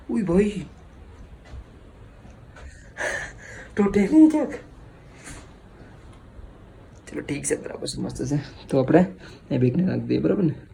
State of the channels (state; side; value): identical; both; correlation 1.00